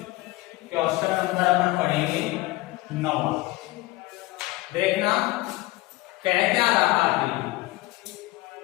क्वेश्चन नंबर अपन पढ़ेंगे 9। देखना कह क्या रहा है,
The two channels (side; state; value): right; quieter; 19.7 dB